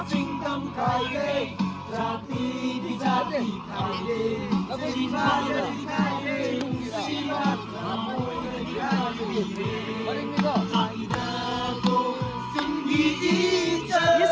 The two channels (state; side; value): identical; both; correlation 1.00